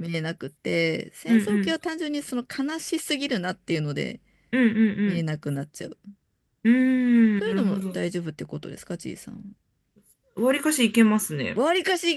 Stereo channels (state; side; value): identical; both; correlation 1.00